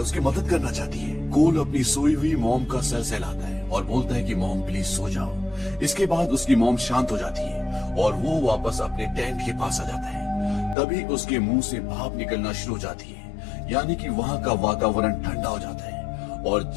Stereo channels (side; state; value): right; drops out; at 10.8 s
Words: मदद करना चाहती है। कोल अपनी सोई हुई मॉम का सर सहलाता है और बोलता है कि मॉम प्लीज सो जाओ। इसके बाद उसकी मॉम शांत हो जाती है और वो वापस अपने टेंट के पास आ जाता है। तभी उसके मुंह से भाप निकलना शुरू हो जाती है, यानी कि वहाँ का वातावरण ठंडा हो जाता है और